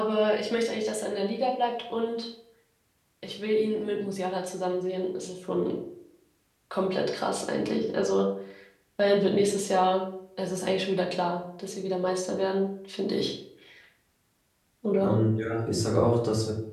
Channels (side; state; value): both; identical; correlation 1.00